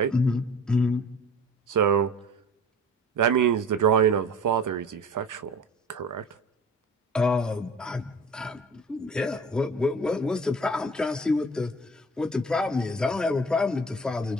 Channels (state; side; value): normal; both; correlation 0.42